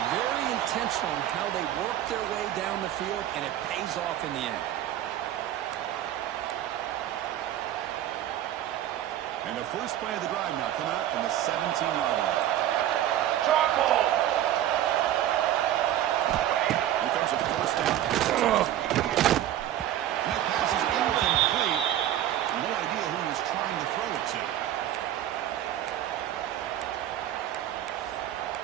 very intentional in how they worked their way down the field, and it pays off in the end. And the first play of the drive now coming out from the 17-yard line. Charcoal. Here comes a first down. And that pass is incomplete. No idea who he was trying to throw it to.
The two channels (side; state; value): left; quieter; 12.2 dB